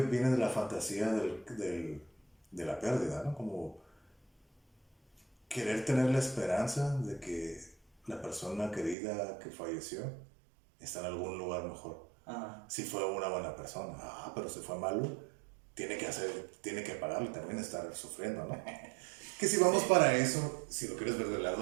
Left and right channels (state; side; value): drops out; left; at 9.0 s